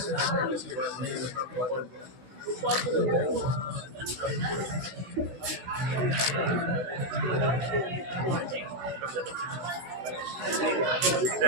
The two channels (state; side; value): late; left; 16 ms